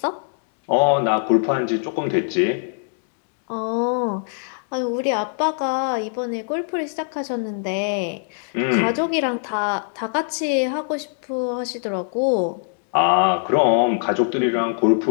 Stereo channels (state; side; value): silent; right; digital silence